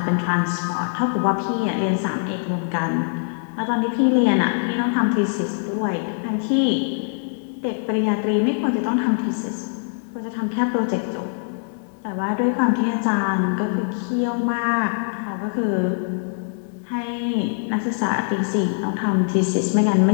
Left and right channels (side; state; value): right; silent; digital silence